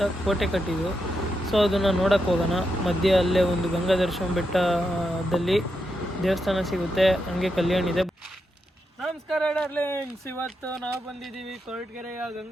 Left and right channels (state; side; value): normal; both; correlation 0.84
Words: ಕೋಟೆ ಕಟ್ಟಿದ್ರು. ಸೊ ಅದನ್ನು ನೋಡೋಕ್ಕೆ ಹೋಗೋಣ. ಮಧ್ಯೆ ಅಲ್ಲೇ ಒಂದು ಗಂಗಾಧರೇಶ್ವರ ಬೆಟ್ಟದಲ್ಲಿ ದೇವಸ್ಥಾನ ಸಿಗುತ್ತೆ, ಹಂಗೆ ಕಲ್ಯಾಣ ಇದೆ. ನಮಸ್ಕಾರ ಡಾರ್ಲಿಂಗ್ಸ್, ಇವತ್ತು ನಾವು ಬಂದಿದ್ದೀವಿ ಕೊರಟಗೆರೆಯ